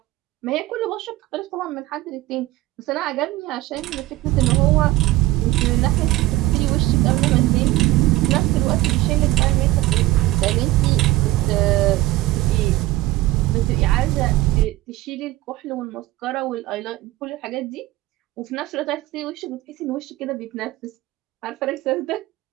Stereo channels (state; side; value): quieter; left; 17.4 dB